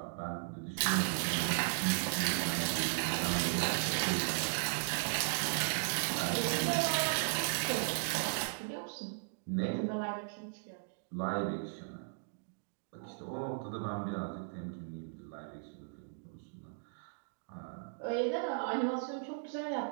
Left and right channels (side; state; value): left; silent; digital silence